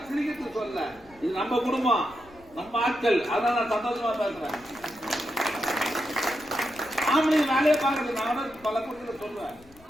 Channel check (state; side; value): noise; left; rumble, 25 dB below the sound